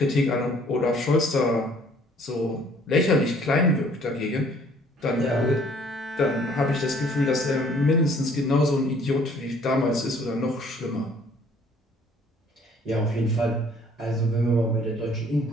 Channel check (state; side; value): normal; both; correlation 0.58